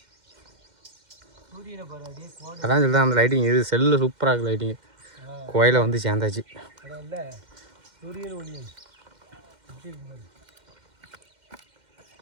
வெளியில் பாரு அப்படியே கோடை. அதான் சொல்லிதான் அந்த லைட்டிங் இது செல்லில் சூப்பராக இருக்குது லைட்டிங். கோயிலை வந்து சேர்ந்தாச்சு. அதான் இல்லை சூரியன் ஒளியன் எப்படி இருக்கு பாரு.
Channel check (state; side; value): late; left; 2.1 ms